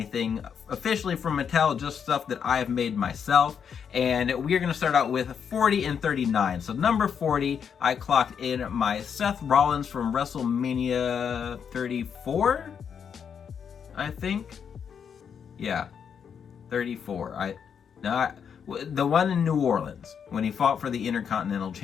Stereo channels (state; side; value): quieter; right; 7.3 dB